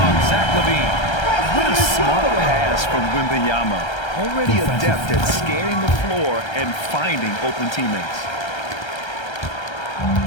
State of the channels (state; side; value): late; right; 1.3 ms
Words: Zach LaVine. What a smart pass from Wembanyama. Already adept at scanning the floor and finding open teammates.